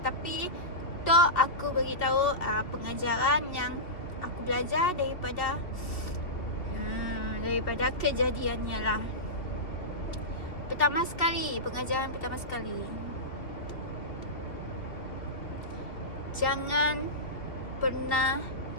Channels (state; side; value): late; right; 2.7 ms